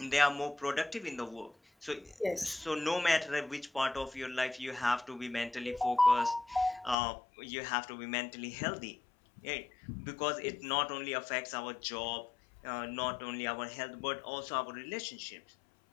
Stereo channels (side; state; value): right; drops out; at 7.0 s